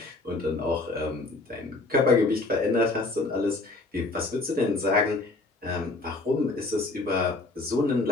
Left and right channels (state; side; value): quieter; right; 3.2 dB